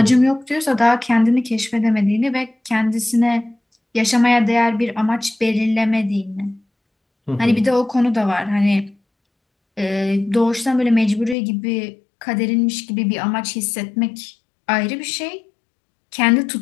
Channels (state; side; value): drops out; right; at 11.4 s